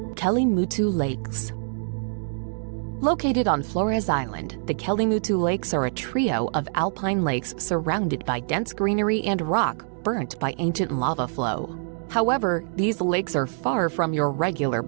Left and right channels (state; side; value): silent; left; digital silence